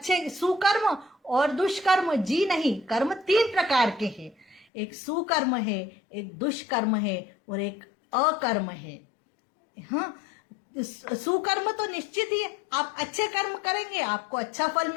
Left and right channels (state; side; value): drops out; right; at 4.7 s